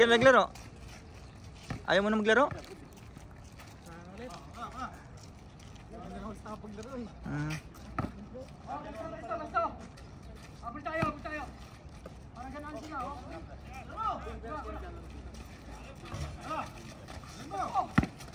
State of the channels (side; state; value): both; identical; correlation 1.00